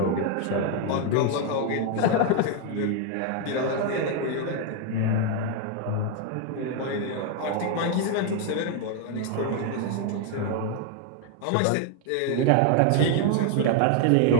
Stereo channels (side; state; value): both; different; correlation 0.01